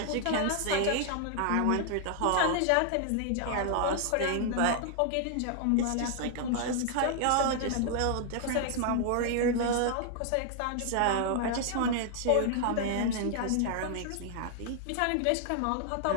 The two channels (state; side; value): different; both; correlation 0.00